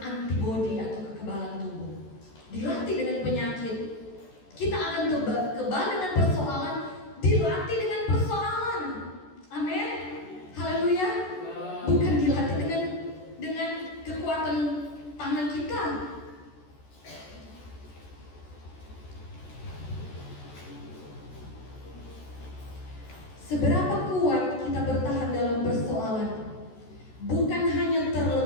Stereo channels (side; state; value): right; late; 14 ms